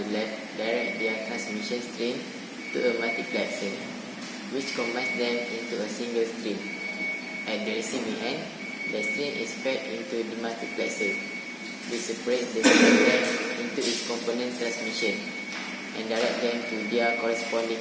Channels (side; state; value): both; identical; correlation 1.00